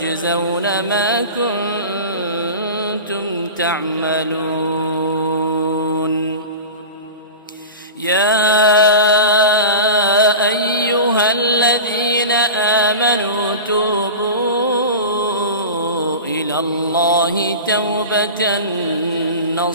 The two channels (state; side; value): inverted; both; correlation -0.31